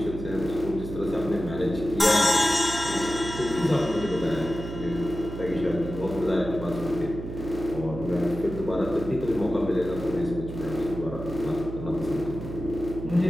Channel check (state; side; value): noise; right; hum, 9 dB below the sound